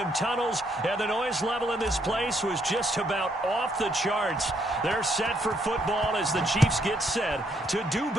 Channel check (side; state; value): both; normal; correlation 0.72